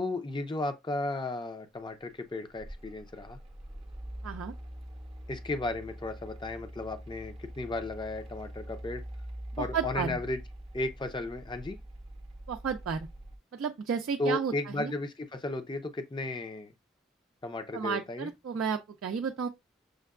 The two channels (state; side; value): normal; both; correlation 0.50